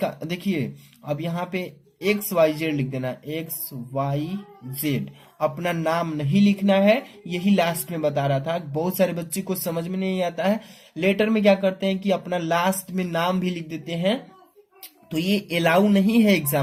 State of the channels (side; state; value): both; identical; correlation 1.00